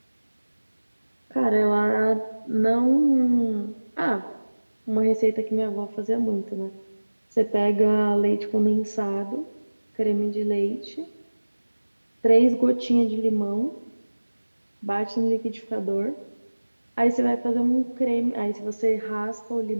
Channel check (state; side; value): inverted; both; correlation -1.00